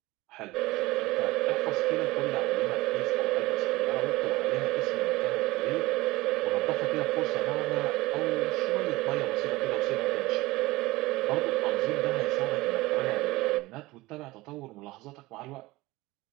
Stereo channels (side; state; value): left; quieter; 20.0 dB